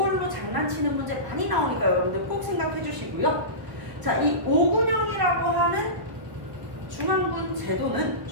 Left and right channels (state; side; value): late; left; 1.4 ms